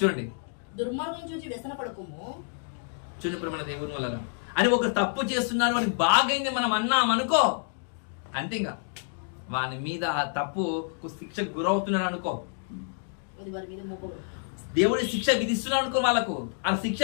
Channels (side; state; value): right; silent; 59 dB below the other